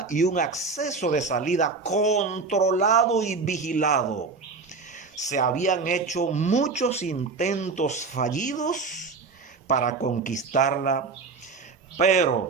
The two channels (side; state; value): left; quieter; 4.5 dB